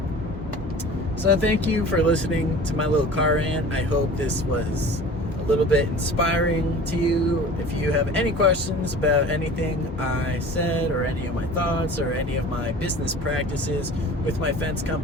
So thank you for listening to my little car rant. I hope this was a little bit inspiring to you. If you have any questions about anything I said or any of my thoughts or any of my business practices with my fence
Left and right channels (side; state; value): both; normal; correlation 0.41